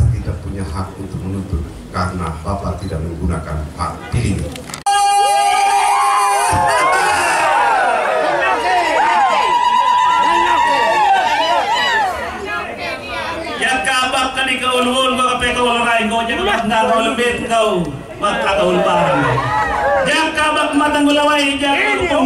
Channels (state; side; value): identical; both; correlation 1.00